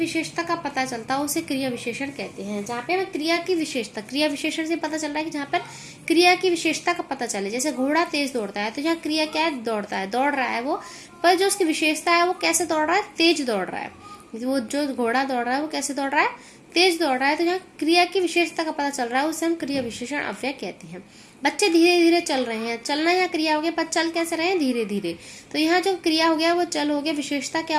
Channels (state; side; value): identical; both; correlation 1.00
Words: का पता चलता है उसे क्रिया विशेषण कहते हैं। जहाँ पे हमें क्रिया की विशेषता, क्रिया विशेषण से पता चल रहा है कि जहाँ पर क्रिया की विशेषता का पता चले। जैसे घोड़ा तेज दौड़ता है, तो यहाँ क्रिया क्या है, दौड़ता है, दौड़ रहा है वो, पर जो उसकी विशेषता है वो कैसे दौड़ रहा है, तेज दौड़ रहा है। वो जो घोड़ा दौड़ रहा है वो कैसे दौड़ रहा है, तेज दौड़ रहा है। तो यहाँ क्रिया की विशेषता का पता चल रहा है, उसे हम क्रिया विशेषण अव्यय कहते हैं। बच्चे धीरे धीरे चल रहे हैं, चलना यहाँ क्रिया हो गया, पर चल कैसे रहे हैं, धीरे धीरे। तो यहाँ जो क्रिया हो गया वो चल हो गया, विशेषता क्या